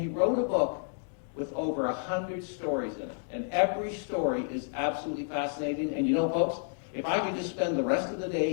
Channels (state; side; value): silent; right; digital silence